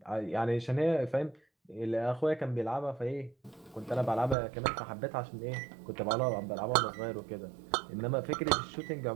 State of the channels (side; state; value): left; drops out; at 4.4 s